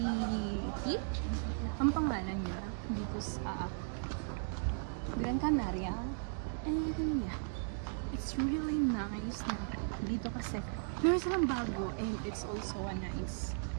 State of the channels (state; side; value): silent; left; digital silence